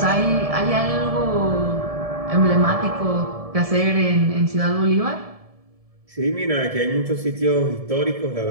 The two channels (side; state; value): left; late; 1.7 ms